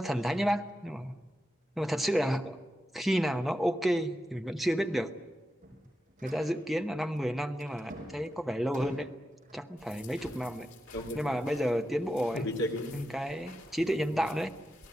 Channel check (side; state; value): both; normal; correlation 0.89